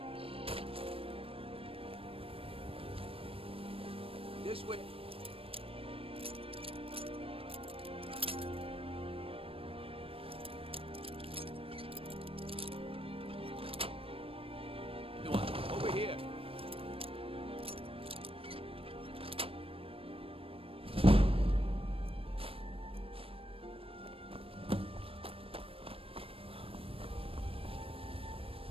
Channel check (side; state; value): left; late; 0.27 ms